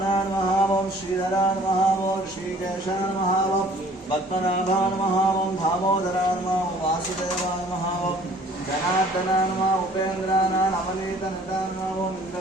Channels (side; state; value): both; normal; correlation 0.53